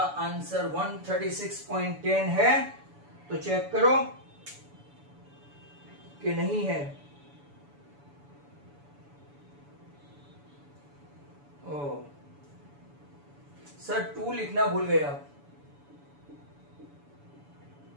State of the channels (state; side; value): late; left; 7.0 ms